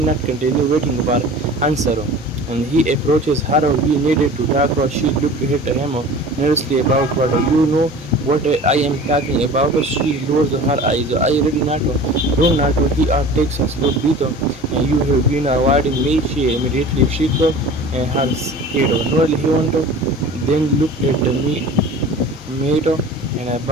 continue waiting for answer, and he approaches her. We needed to talk. She looked at him nervously about what you know what I am talking about. She lowers her eyes. I really not do not. He takes a slow breath. You have been avoiding me. She immediately shook her head. No, he want then looked at me, mate, and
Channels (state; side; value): normal; both; correlation 0.40